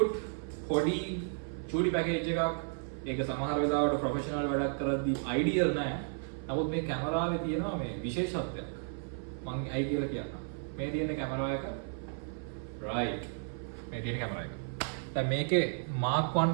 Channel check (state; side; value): silent; left; 56 dB below the other